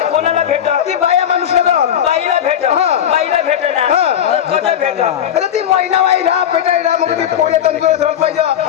कोणाला भेट ती बाया माणूस ना बाईला भेट हा. बाईला भेट ना हा. कसं भेट अरे ती महिना बाई राहा पेटायला मग ते पोळे तंदुरुस्त राहून पाहिजे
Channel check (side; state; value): right; quieter; 9.7 dB